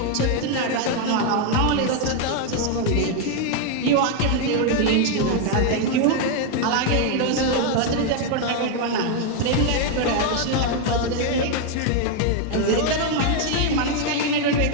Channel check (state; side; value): different; both; correlation 0.01